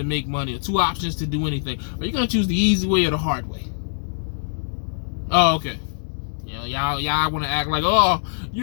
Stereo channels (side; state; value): right; silent; digital silence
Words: make money, or 2 options to do anything, are you gonna choose the easy way or the hard way? Oh, okay. You know, y'all want to act like, oh,